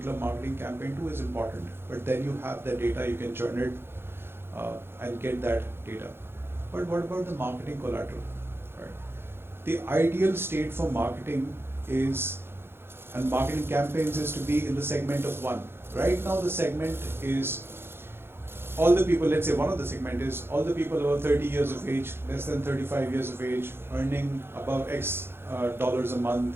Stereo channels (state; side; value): late; left; 0.11 ms